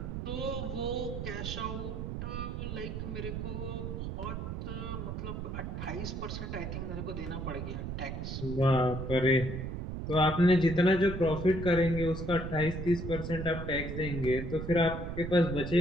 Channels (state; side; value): noise; right; rumble, 5 dB below the sound